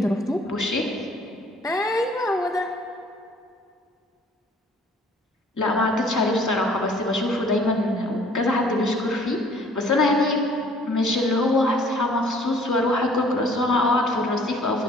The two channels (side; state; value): both; normal; correlation 0.56